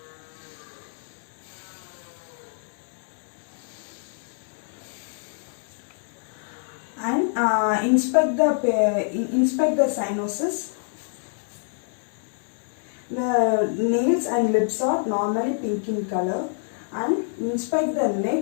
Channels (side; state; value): right; silent; digital silence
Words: And inspect the sinuses. The nails and lips are normally pink in color. And inspect the